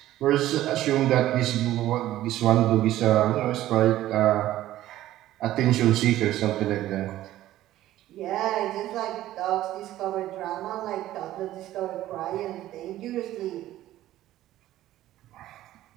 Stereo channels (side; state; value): left; quieter; 14.2 dB